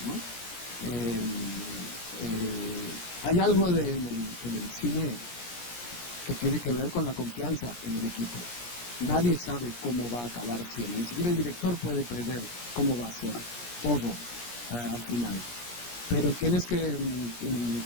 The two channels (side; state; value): right; late; 17 ms